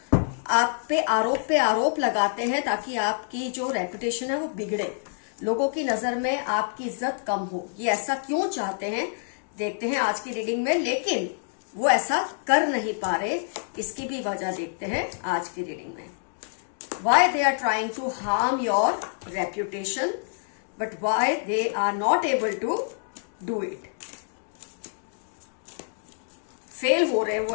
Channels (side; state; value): right; silent; digital silence